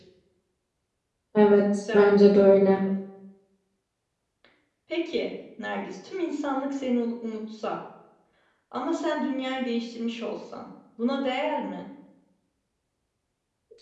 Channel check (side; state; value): both; identical; correlation 1.00